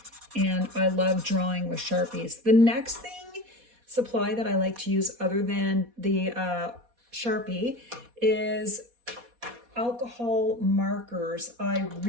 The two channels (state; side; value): late; left; 4.2 ms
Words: and I love drawing with Sharpies. The next supply that I like to use other than the Sharpie is alcohol markers. I